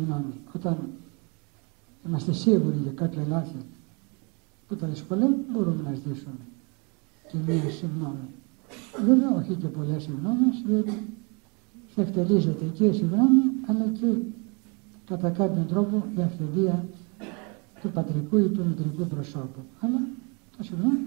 Όταν είμαστε σίγουροι για κάποια λάθη που τα δυσκολεύουν, μπορούμε να ζητήσουμε και μία συγγνώμη. Βέβαια, όχι και πολλές συγγνώμες, διότι θα εκτελίζεται και η συγγνώμη, αλλά και κατά κάποιον τρόπο η αυθεντία του πατρικού ή του μητρικού προσώπου. Αλλά το συγγνώμη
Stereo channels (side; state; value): left; quieter; 32.4 dB